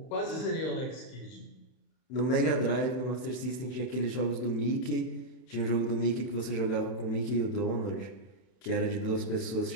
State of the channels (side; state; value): right; late; 32 ms